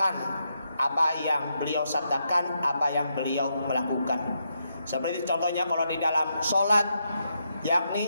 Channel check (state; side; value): inverted; both; correlation -0.81